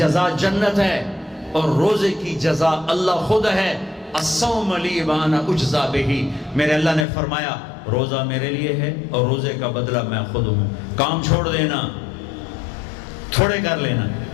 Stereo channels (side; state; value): right; drops out; at 7.1 s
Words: جنت ہے اور روزے کی جزا اللہ خود ہے۔ الصوم لی وانا اجزا بہ، میرے اللہ نے فرمایا روزہ میرے لیے ہے اور روزے کا بدلہ میں خود ہوں۔ کام چھوڑ دینا، تھوڑے کر لینا،